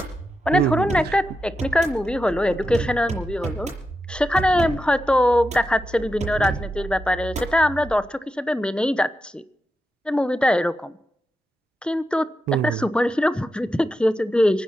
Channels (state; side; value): normal; both; correlation 0.88